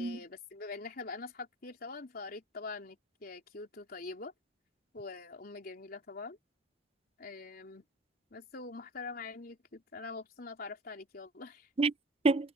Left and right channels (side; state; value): both; normal; correlation 0.40